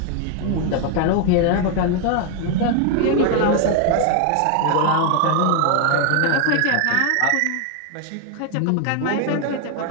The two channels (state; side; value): different; both; correlation 0.00